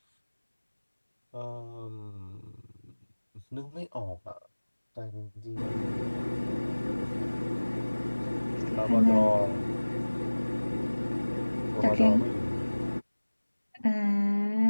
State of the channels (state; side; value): inverted; both; correlation -1.00